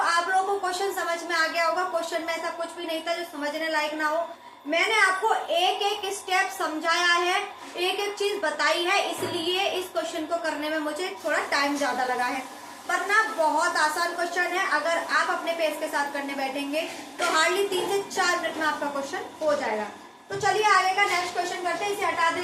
आप लोगों को क्वेश्चन समझ में आ गया होगा। क्वेश्चन में ऐसा कुछ भी नहीं था जो समझने लायक ना हो। मैंने आपको एक एक स्टेप समझाया है, एक एक चीज बताई है, इसलिए इस क्वेश्चन को करने में मुझे थोड़ा टाइम ज्यादा लगा है, वरना बहुत आसान क्वेश्चन है। अगर आप अपने पेस के साथ करने बैठेंगे तो हार्डली 3 से 4 मिनट में आपका क्वेश्चन हो जाएगा। तो चलिए आगे का नेक्स्ट क्वेश्चन करते हैं। इसे हटा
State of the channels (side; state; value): both; identical; correlation 1.00